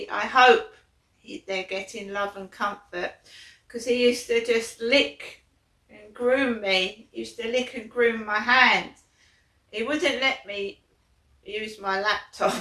I hope they're getting love and comfort, because he used to just lick and groom me. He used to lick and groom my hand. He wouldn't let me use my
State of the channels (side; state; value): both; identical; correlation 1.00